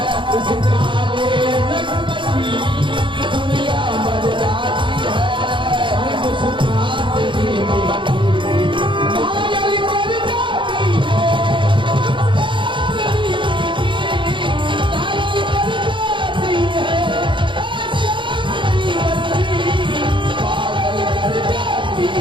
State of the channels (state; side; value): late; left; 0.24 ms